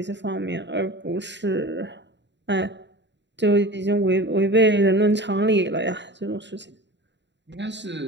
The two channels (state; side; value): late; left; 0.52 ms